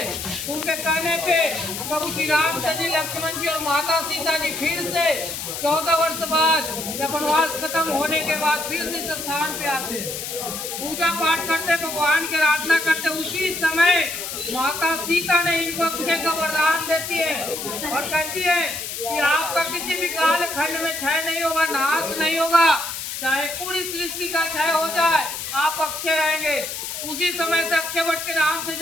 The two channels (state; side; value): noise; left; hiss, 6 dB below the sound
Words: उनके कहने पे प्रभु श्री रामचंद्र जी, लक्ष्मण जी और माता सीता जी फिर से 14 वर्ष बाद जब वनवास खत्म होने के बाद फिर से इस स्थान पे आते, पूजा पाठ करते, भगवान की आराधना करते। उसी समय माता सीता ने इनको अक्षय का वरदान देती है और कहती है कि आपका किसी भी काल खंड में क्षय नहीं होगा, नाश नहीं होगा, चाहे पूरी सृष्टि का क्षय हो जाए, आप अक्षय रहेंगे। उसी समय से अक्षय वट के नाम से